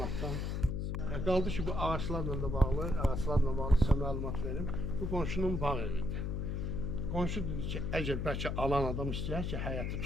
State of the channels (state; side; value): noise; left; hum, 1 dB below the sound